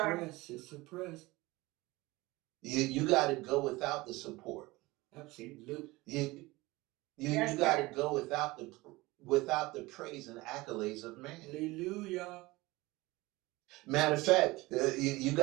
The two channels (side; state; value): left; quieter; 21.1 dB